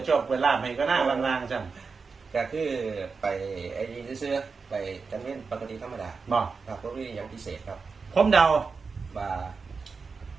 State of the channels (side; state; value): left; quieter; 4.9 dB